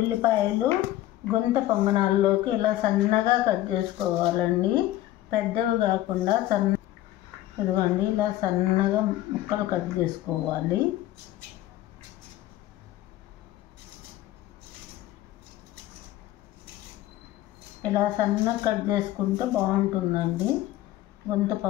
గుంత పొంగనాల్లోకి ఇలా సన్నగా కట్ చేసుకోవాలండి, పెద్దవి కాకుండా ఇదిగోండి ఇలా సన్నగా ముక్కలు కట్ చేసుకోవాలి. ఇలా సన్నగా కట్ చేసుకుంటే బాగుంటుందండి. గుంత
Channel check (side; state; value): right; quieter; 14.9 dB